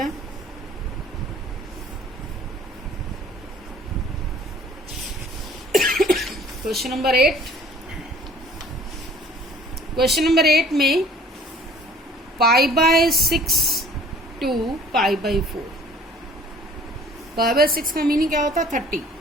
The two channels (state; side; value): normal; both; correlation 0.52